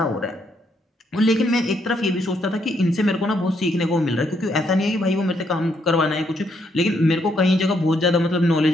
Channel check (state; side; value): normal; both; correlation 0.74